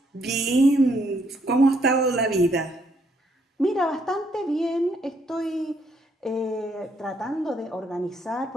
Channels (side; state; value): both; normal; correlation 0.71